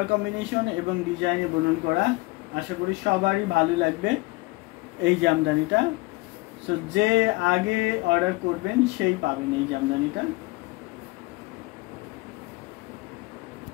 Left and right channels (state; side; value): quieter; right; 23.6 dB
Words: কম্বিনেশন এবং ডিজাইনে বুনন করা, আশা করি সবারই ভালো লাগবে এই জামদানিটা। সো যে আগে অর্ডার করবেন সেই পাবেন এই জামদানিটা।